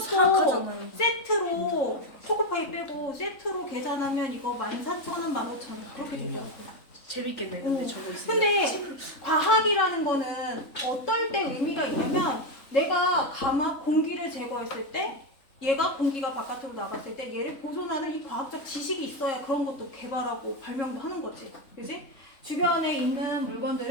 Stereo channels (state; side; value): late; right; 3.6 ms